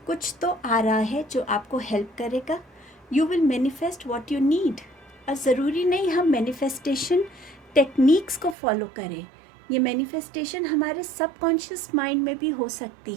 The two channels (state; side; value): drops out; left; at 8.6 s